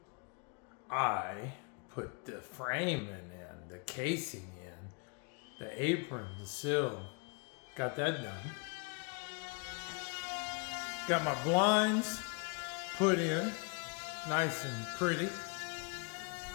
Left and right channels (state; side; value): quieter; right; 33.9 dB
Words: I put the framing in, the casing in, the apron, the sill. Got that done. Got my blinds put in, nice and pretty.